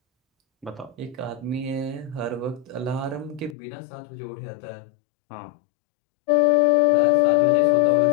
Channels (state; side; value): drops out; right; at 3.6 s